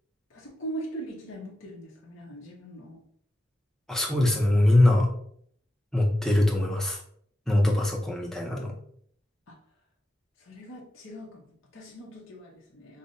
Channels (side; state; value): both; normal; correlation 0.91